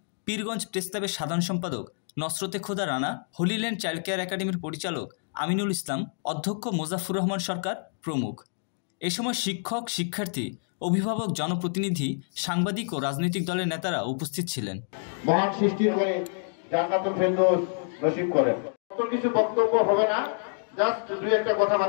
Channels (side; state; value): right; silent; digital silence